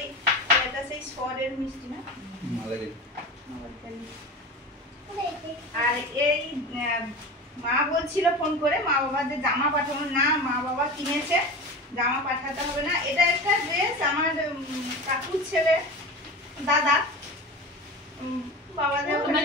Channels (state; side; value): normal; both; correlation 0.30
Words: এটা সেই সরের মিষ্টি না? আর এই মা বলছিল ফোন করে, মা বাবার যে জামা পাঠানো না, মা বাবা কিনেছে, জামা পাঠাতে হবে না। এটা একটা ড্রেস আমার কাকুর ছেলে দাদা বাবা যে